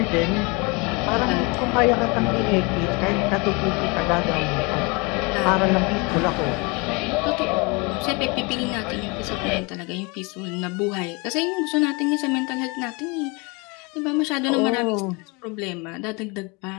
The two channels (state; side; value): quieter; right; 28.8 dB